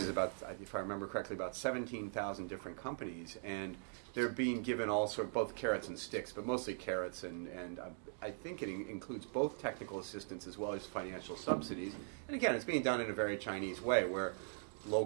about, if I remember correctly, about 17,000 different companies, and they're being given all sort of both carrots and sticks, but mostly carrots, and I think it includes both technical assistance as well as financial subsidies. And again, it's being done in a very Chinese way, where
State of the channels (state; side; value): silent; left; digital silence